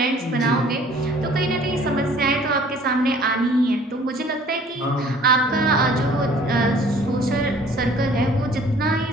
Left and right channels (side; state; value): both; normal; correlation 0.53